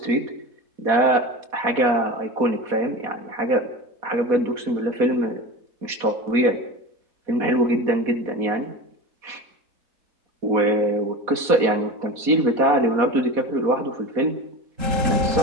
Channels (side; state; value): left; late; 4.2 ms